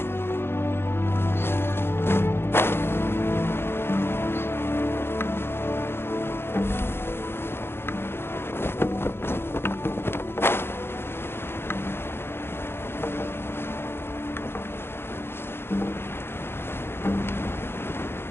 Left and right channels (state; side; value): late; right; 0.11 ms